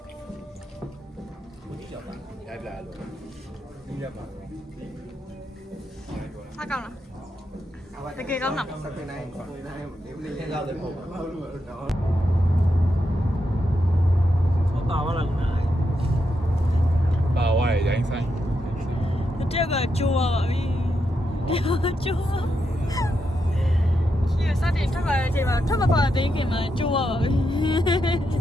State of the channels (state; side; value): normal; both; correlation 0.84